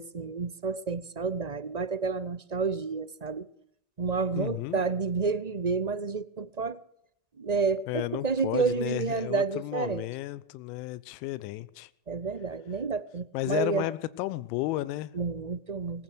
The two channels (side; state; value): left; late; 1.9 ms